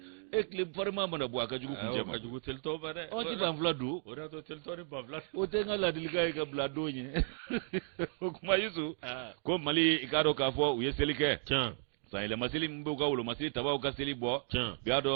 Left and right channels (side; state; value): left; silent; digital silence